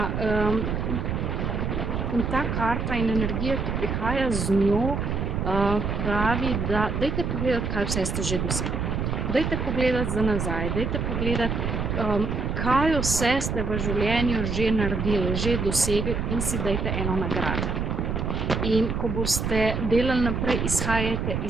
in ta karta in energija, ki prihaja z njo, pravi, da dajte pogledati, kaj vse ste že dosegli. Dajte pogledati za nazaj, dajte pogledati, kaj vse ste v življenju že naredili, že dosegli, in si dajte eno nagrado. In ko boste delali naprej, izhajajte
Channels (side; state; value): right; noise; rumble, 1 dB below the sound